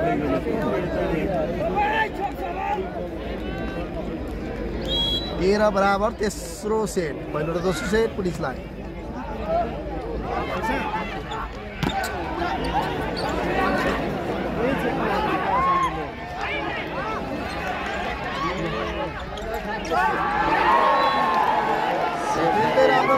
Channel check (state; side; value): identical; both; correlation 1.00